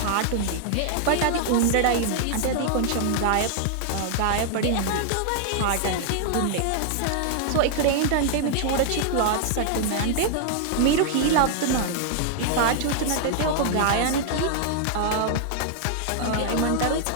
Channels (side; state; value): both; different; correlation 0.00